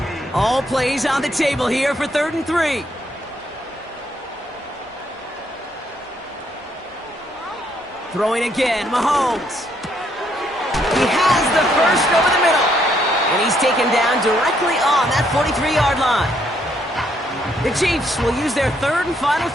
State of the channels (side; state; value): both; normal; correlation 0.71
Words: All plays on the table here for 3rd and 3. Throwing again, Mahomes. He has the first over the middle. And he's taken down directly on that 43-yard line. The Chiefs will use their 3rd and final